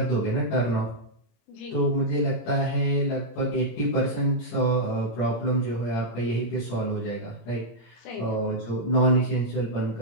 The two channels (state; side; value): late; right; 26 ms